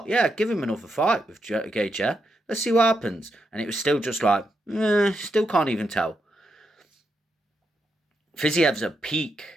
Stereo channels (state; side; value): normal; both; correlation 0.82